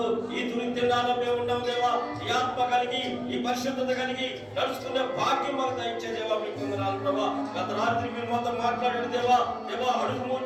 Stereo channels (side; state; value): both; identical; correlation 1.00